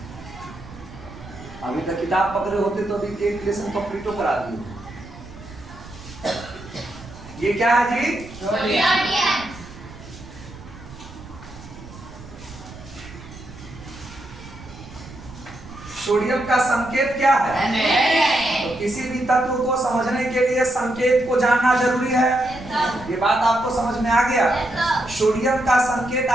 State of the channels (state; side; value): noise; right; rumble, 17 dB below the sound